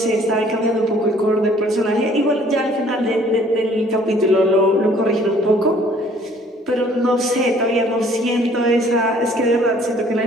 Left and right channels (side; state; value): both; normal; correlation 0.57